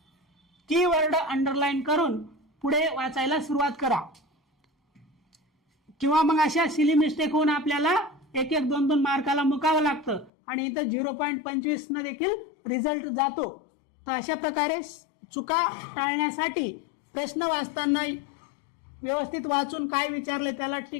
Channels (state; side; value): drops out; right; at 10.3 s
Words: कीवर्ड अंडरलाईन करून पुढे वाचायला सुरुवात करा, किंवा मग अशा सिली मिस्टेक होऊन आपल्याला 1-1, 2-2 मार्काला मुकावं लागतं आणि इथं 0.25 न देखील रिझल्ट जातो. तर अशा प्रकारे चुका टाळण्यासाठी प्रश्न वाचताना व्यवस्थित वाचून काय विचारले त्याला